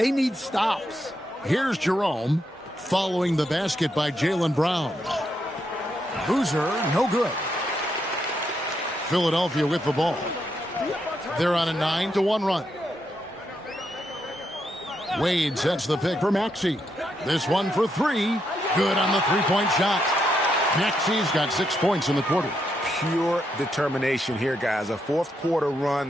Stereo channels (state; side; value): normal; both; correlation 0.80